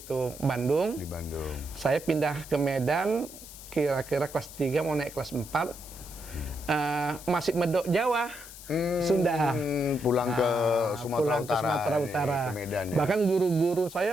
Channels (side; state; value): left; noise; hiss, 15 dB below the sound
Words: Bandung. Di Bandung. Saya pindah ke Medan kira-kira kelas 3 mau naik kelas 4. Masih medok Jawa. Sunda. Pulang ke Sumatera Utara. Ke Sumatera Utara. Ke Medan, ya. Bahkan guru-guru saya